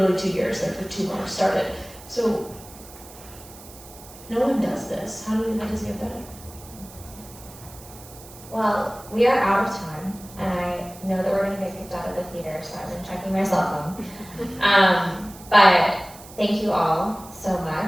2 years. There's like 2 more started. So no one does this. How does it get better? Well, we are out of time, and I know that we're gonna get kicked out of the theater, so I've been checking my cell phone. But thank you all so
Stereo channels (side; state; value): right; noise; hiss, 19 dB below the sound